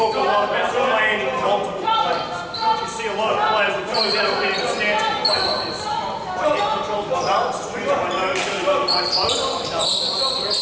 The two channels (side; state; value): both; identical; correlation 1.00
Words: a lot about landing multiple planes. You see a lot of players that close out of being in a stance and play like this. My head controls my balance, swings my nose really well with my toes.